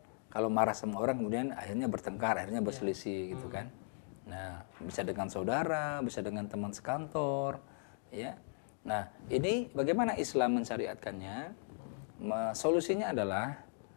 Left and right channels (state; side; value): silent; right; digital silence